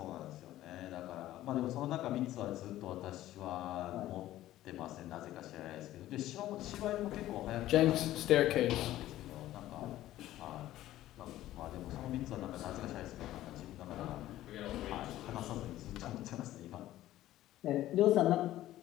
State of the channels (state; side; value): quieter; right; 14.4 dB